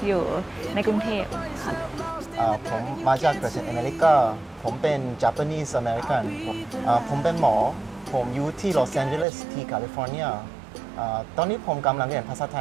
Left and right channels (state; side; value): drops out; left; at 9.2 s